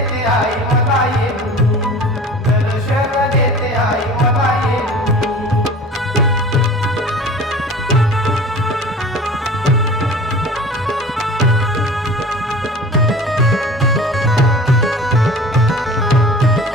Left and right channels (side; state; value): both; normal; correlation 0.41